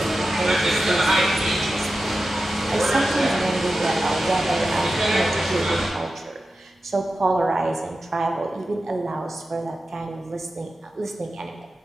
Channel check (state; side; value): normal; both; correlation 0.93